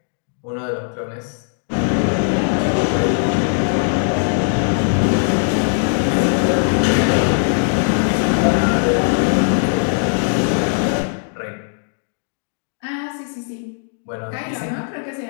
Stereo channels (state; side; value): silent; right; 57 dB below the other